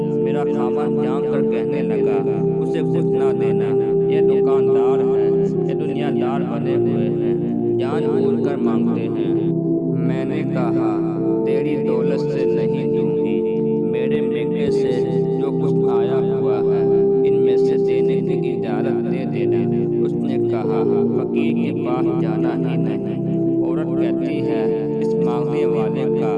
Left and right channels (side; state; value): both; identical; correlation 1.00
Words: मेरा खामन जान कर कहने लगा, उसे कुछ ना देना, ये दुकानदार है, ये दुनियादार बने हुए हैं, जान बूझ कर मांगते हैं। मैंने कहा, तेरी दौलत से नहीं दूंगी, मेरे मेके से जो कुछ आया हुआ है इनमें से देने की इजाजत दे देना। उसने कहा, फकीर के पास जाना ही नहीं। औरत कहती है, इस मांगने वाले का